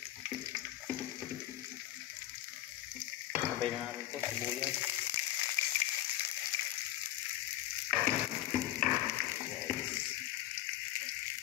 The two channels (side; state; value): right; quieter; 14.1 dB